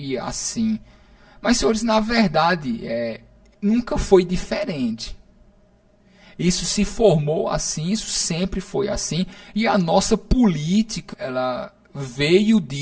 assim. Mas, senhores, na verdade, nunca foi diferente. Isso se formou assim, isso sempre foi assim. E a nossa política, ela veio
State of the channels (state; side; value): identical; both; correlation 1.00